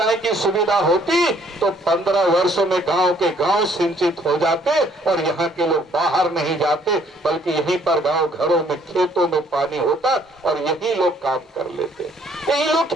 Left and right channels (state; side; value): normal; both; correlation 0.63